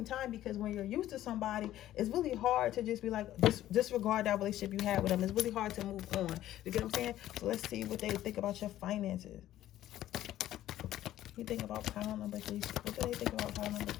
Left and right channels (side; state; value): right; quieter; 13.3 dB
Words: time, because when you're used to somebody, it's really hard to just be like, disregard that relationship you had with them. It's really hard to move on. You get what I'm saying? So let's see what they think about your finances. You think about pile number 3. What do they think about pile number